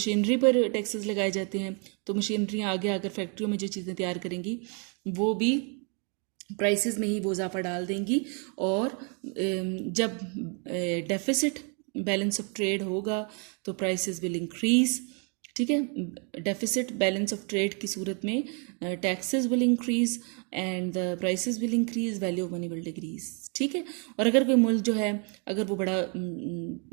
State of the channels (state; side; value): quieter; left; 38.1 dB